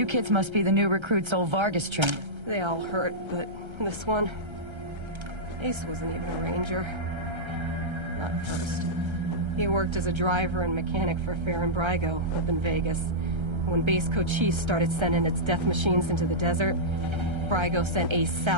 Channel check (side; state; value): left; late; 1.3 ms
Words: kids must be the new recruits old Vargas trained. They all hurt, but this one... Ace wasn't even a ranger. Not at first. He worked as a driver and mechanic for Fair and Brygo up in Vegas. When Base Cochise started sending its death machines into the desert, Brygo sent Ace